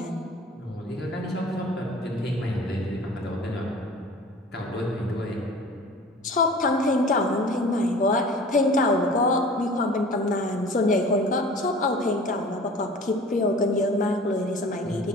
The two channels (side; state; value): both; normal; correlation 0.43